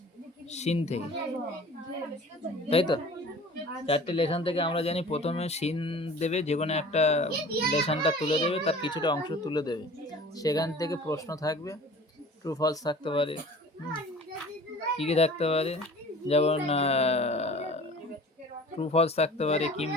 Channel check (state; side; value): normal; both; correlation 0.44